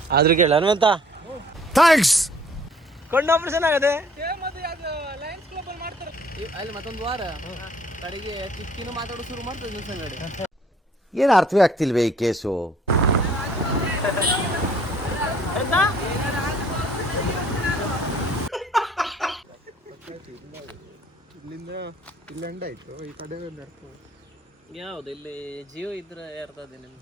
ಆದ್ರೂ ಕೇಳಿ ಹನುಮಂತ ಥ್ಯಾಂಕ್ಸ್. ಕಣ್ಣು ಆಪರೇಷನ್ ಆಗದೆ ಅಲ್ಲಿ ಮತ್ತೊಂದು ವಾರ ಕಡೆಗೆ ಕಿಕ್ಕಿನೂ ಮಾತಾಡೋ ಶುರು ಮಾಡ್ತದೆ ದಿವಸ ಅಂಗಡಿ. ಏನು ಅರ್ಥವೇ ಆಗ್ತಿಲ್ವೇ ಈ ಕೇಸು? ಇಲ್ಲಿಂದ ಇಲ್ಲೆಂಡ್ ಆಯ್ತು, ಈ ಕಡೆ ಯಾವ್ದು ಇಲ್ಲಿ ಜಿಯೋ ಇದ್ರೆ ಇರ್ತದೆ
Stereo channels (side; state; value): both; normal; correlation 0.57